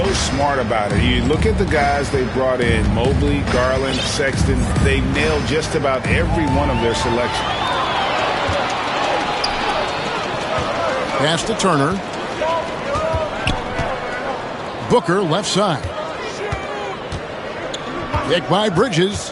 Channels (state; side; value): identical; both; correlation 1.00